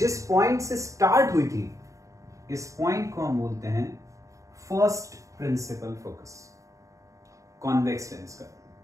पॉइंट से स्टार्ट हुई थी, इस पॉइंट को हम बोलते हैं first principal focus convex lens का।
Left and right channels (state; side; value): late; left; 0.16 ms